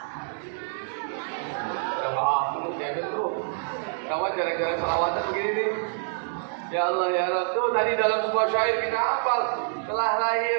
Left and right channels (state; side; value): silent; left; digital silence